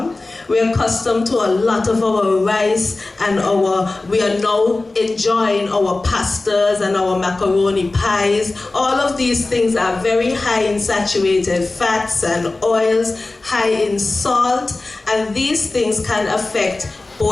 We are accustomed to a lot of our rice and we are now enjoying our pastas and our macaroni pies. All of these things are very high in saturated fats and oils, high in salt, and these things can affect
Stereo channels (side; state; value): right; quieter; 3.2 dB